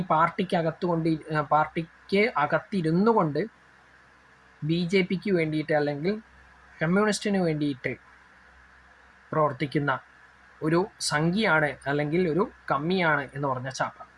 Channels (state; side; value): identical; both; correlation 1.00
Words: പാർട്ടിക്ക് അകത്തിരുന്നു കൊണ്ട് BJPക്ക് വേണ്ടിയിട്ട് അല്ലെങ്കിൽ കമ്മ്യൂണിസ്റ്റിന് വേണ്ടിയിട്ട് പ്രവർത്തിക്കുന്ന ഒരു സംഖ്യയാണ് അല്ലെങ്കിൽ ഒരു കമ്മിയാണ് എന്ന് പറഞ്ഞ ചാപ്പ.